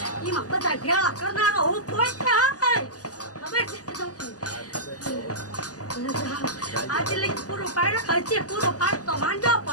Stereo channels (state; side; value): late; right; 0.67 ms